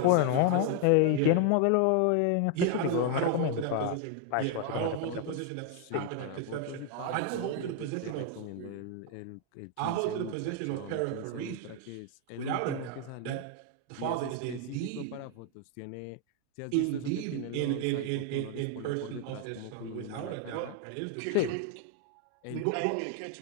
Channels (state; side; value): different; both; correlation 0.00